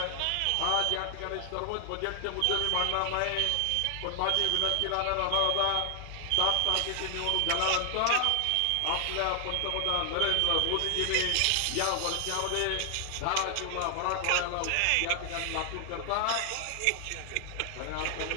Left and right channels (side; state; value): both; different; correlation 0.00